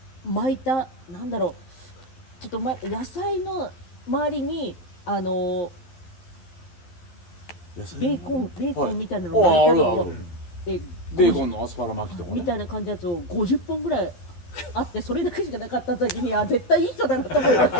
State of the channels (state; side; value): late; right; 12 ms